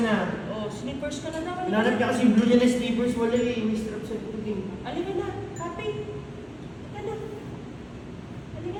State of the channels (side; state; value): both; identical; correlation 1.00